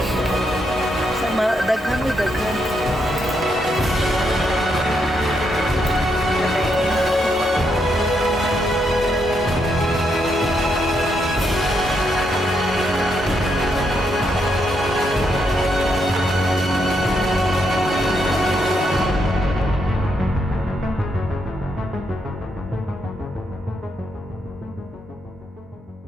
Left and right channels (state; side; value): normal; both; correlation 0.79